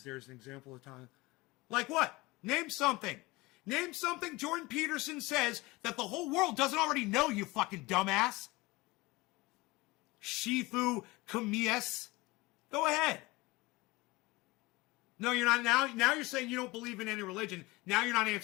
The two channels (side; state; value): right; quieter; 22.1 dB